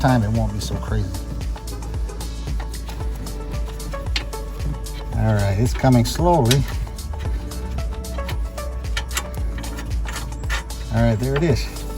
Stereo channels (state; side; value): identical; both; correlation 1.00